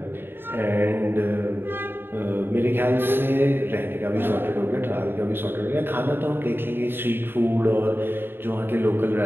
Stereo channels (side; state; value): left; late; 0.10 ms